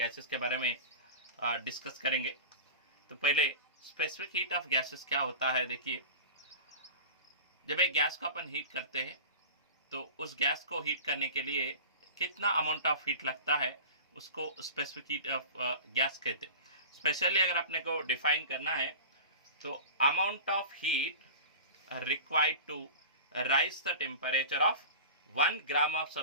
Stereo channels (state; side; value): inverted; both; correlation -0.35